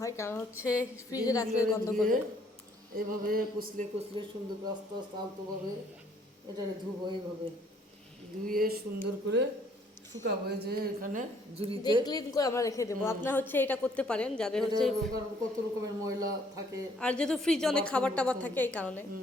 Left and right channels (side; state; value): both; normal; correlation 0.63